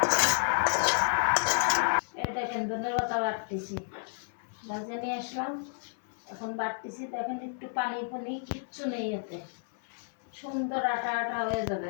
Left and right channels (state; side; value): silent; right; 57 dB below the other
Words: এই দেখেন ধনের পাতা বাটতেছি, ভাজে নিয়ে আসলাম, এখন বাটতেছি। দেখেন একটু পানি পানি কিচ্ছু নেই, এতে সুন্দর আটা আটা হয়ে